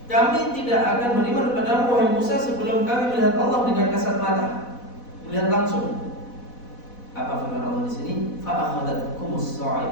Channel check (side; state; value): right; late; 4.1 ms